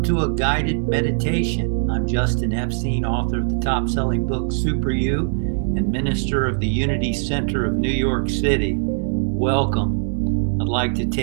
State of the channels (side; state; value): left; silent; digital silence